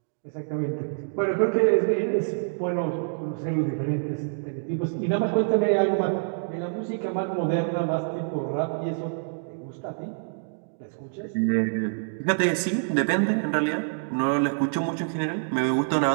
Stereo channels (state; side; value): silent; left; digital silence